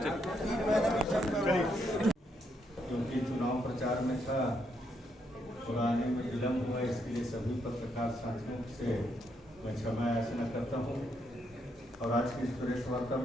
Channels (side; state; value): both; normal; correlation 0.77